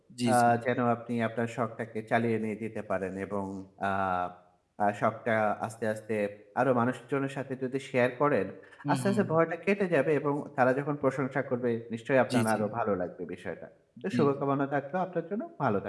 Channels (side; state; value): both; identical; correlation 1.00